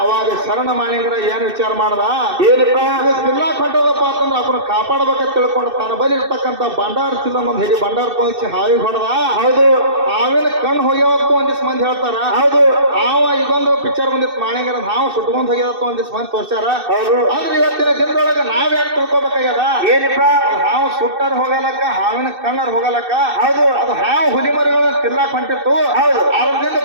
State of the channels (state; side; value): late; left; 2.6 ms